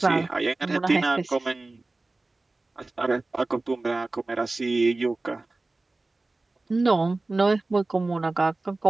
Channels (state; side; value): quieter; left; 3.2 dB